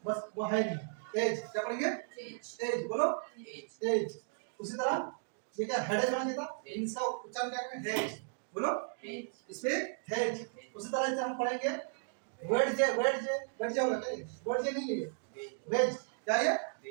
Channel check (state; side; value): silent; left; digital silence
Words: बस वो है नहीं। एज। क्या पढ़ेंगे? एज। बोलो एज। उसी तरह ये क्या हेडेज होना चाहिए था, इसका उच्चारण क्या करेंगे? हेज। बोलो इस पे हेज। उसी तरह से हम पढ़ेंगे वेज होगा क्या ये? वेज नहीं है ये, वेज क्या ये?